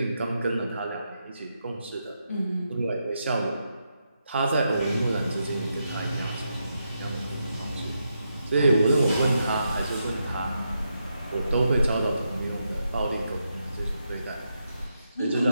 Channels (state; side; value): inverted; both; correlation -0.84